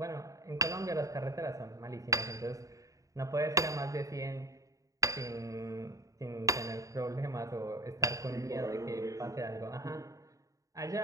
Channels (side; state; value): left; late; 0.16 ms